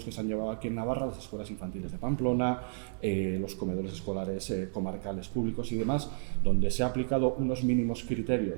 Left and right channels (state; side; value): silent; left; digital silence